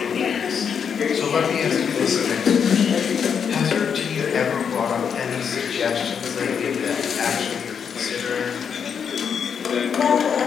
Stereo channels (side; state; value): right; quieter; 7.1 dB